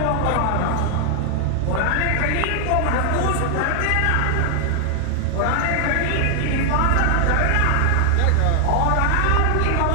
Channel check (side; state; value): both; different; correlation 0.00